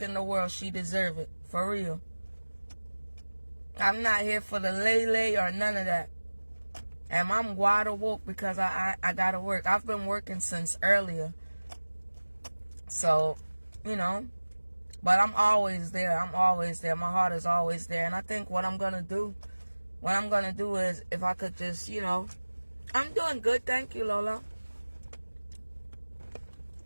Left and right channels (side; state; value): both; inverted; correlation -1.00